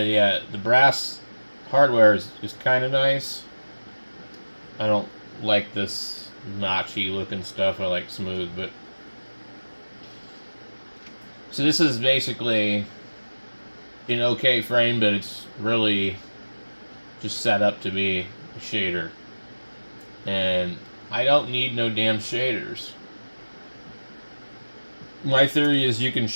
yeah, the brass hardware is kind of nice. I don't like this notchy looking stuff. I like smooth, but so this is basically an okay frame, but it's really just set up to be a shader. And I don't need no damn shaders. My theory is you can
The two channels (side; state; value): both; inverted; correlation -1.00